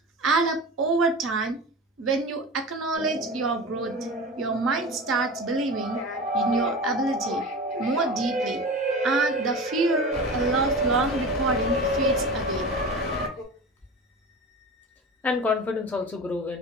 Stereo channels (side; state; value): both; normal; correlation 0.32